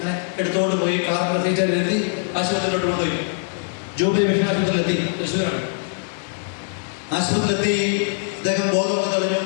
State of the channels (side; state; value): right; silent; 64 dB below the other